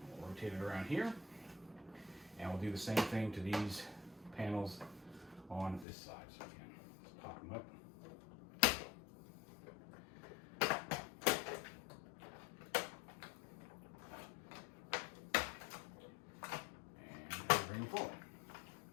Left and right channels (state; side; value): drops out; right; at 5.9 s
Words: We'll rotate it around here, and we'll do the same thing to these panels on this side. So again, let's pop them up. And bring them forward.